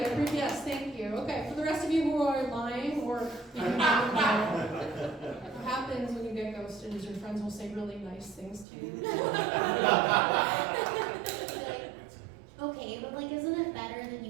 Yes, thank you. Okay, for the rest of you who are lying or even don't know, what happens when you get ghosted is your friends will say really nice things to you. Okay, but like, isn't it better that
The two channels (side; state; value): left; drops out; at 8.7 s